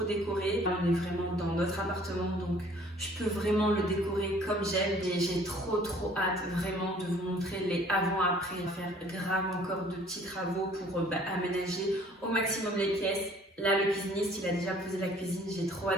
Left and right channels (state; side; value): normal; both; correlation 0.55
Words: décorer. Là, on est vraiment dans notre appartement donc je peux vraiment le décorer comme j'aime et j'ai trop hâte vraiment de vous montrer les avant-après, faire grave encore de petits travaux pour aménager au maximum les pièces. Là, le cuisiniste, il a déjà posé la cuisine. J'ai trop